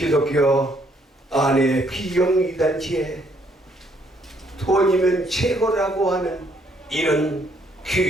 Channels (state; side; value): normal; both; correlation 0.69